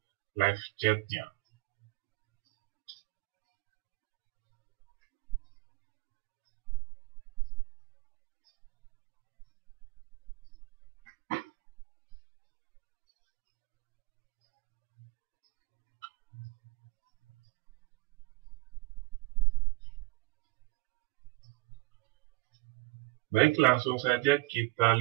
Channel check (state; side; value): quieter; left; 21.3 dB